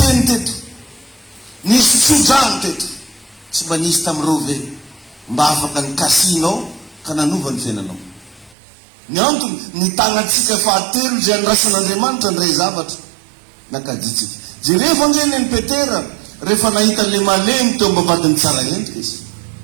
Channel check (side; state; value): left; drops out; at 8.6 s